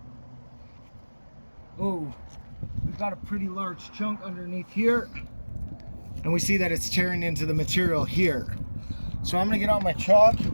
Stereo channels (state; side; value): inverted; both; correlation -1.00